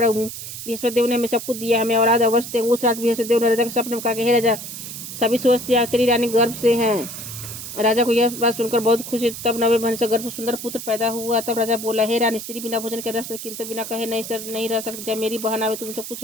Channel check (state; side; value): noise; right; hiss, 9 dB below the sound